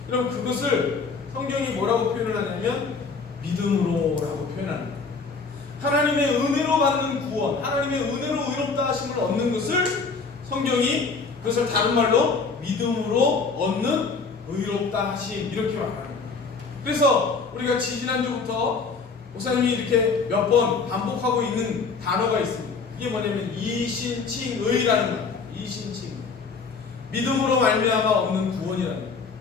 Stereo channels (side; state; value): right; quieter; 4.7 dB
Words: 여러분 그것을 성경이 뭐라고 표현을 하냐면 믿음으로라고 표현합니다. 하나님의 은혜로 받는 구원, 하나님의 은혜로 의롭다 하심을 얻는 것을 성경이 그것을 다른 말로 믿음으로 얻는 의롭다 하심, 이렇게 말합니다. 그래서 우리가 지지난주부터 목사님이 이렇게 몇 번 반복하고 있는 단어가 있습니다. 이게 뭐냐면 이신칭의라는 거예요. 이신칭의. 믿음으로 말미암아 얻는 구원이라는 거예요.